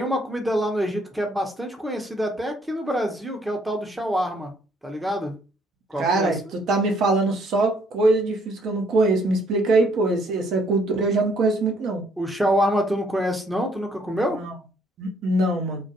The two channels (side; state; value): both; normal; correlation 0.66